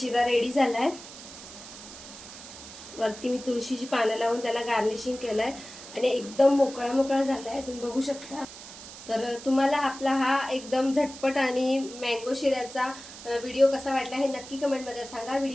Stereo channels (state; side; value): noise; right; hiss, 15 dB below the sound